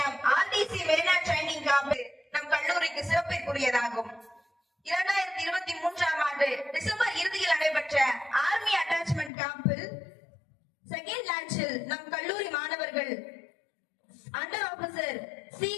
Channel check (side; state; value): right; drops out; at 9.3 s